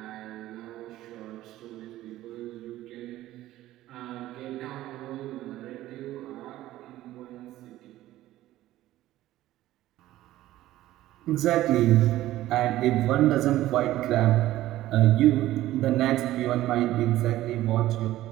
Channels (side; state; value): left; quieter; 15.0 dB